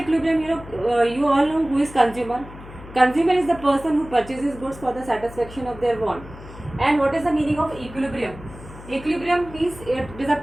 you all know who is consumer. Consumer is the person who purchases goods for the satisfaction of their want. And what is the meaning of equilibrium? Equilibrium means it is a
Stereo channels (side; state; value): left; noise; hum, 16 dB below the sound